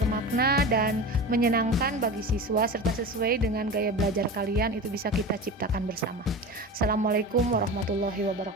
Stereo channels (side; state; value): both; normal; correlation 0.30